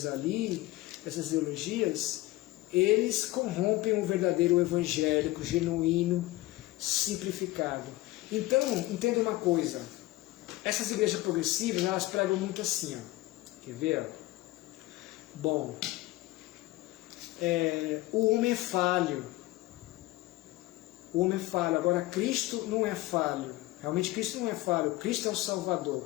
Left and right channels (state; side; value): quieter; right; 18.4 dB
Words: ali, essas ideologias, eles corrompem o verdadeiro evangélico, genuíno, simplificado. Então, entenda uma coisa, essas igrejas progressivas, elas pregam muito assim, ó. Quer ver? Bom, o homem é falho. O homem é falho. Agora, Cristo não é falho. Realmente, Cristo não é falho. Cristo é o Salvador.